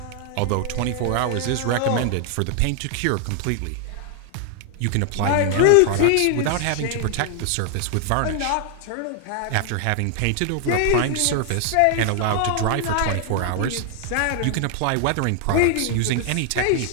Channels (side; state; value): both; different; correlation 0.00